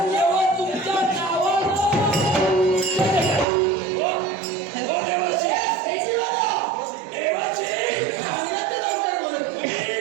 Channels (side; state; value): left; drops out; at 3.5 s